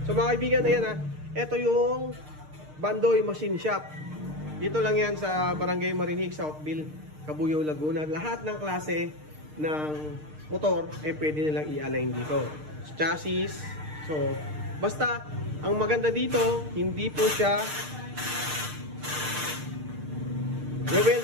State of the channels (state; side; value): late; left; 6.6 ms